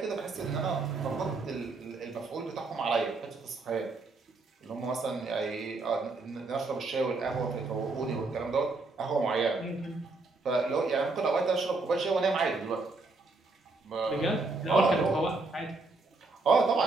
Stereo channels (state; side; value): quieter; left; 3.5 dB